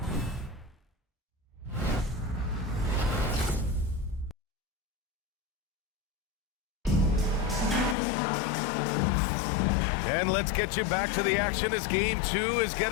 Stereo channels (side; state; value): right; drops out; at 8.0 s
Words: And let's get you back to the action as Game 2 is